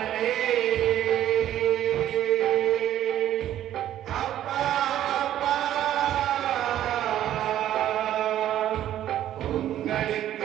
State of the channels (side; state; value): left; quieter; 12.0 dB